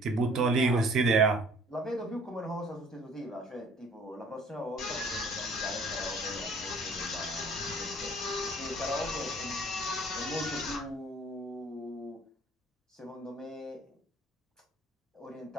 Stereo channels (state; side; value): normal; both; correlation 0.53